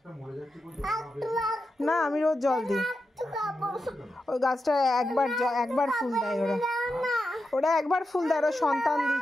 না, আমি রোজ জল দিই। ওই গাছটা একবার ফুল দেয় ওরা একবার ফুল দেয়।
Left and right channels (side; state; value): both; normal; correlation 0.89